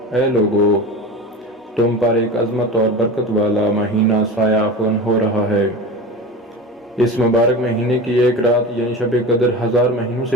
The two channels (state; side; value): normal; both; correlation 0.30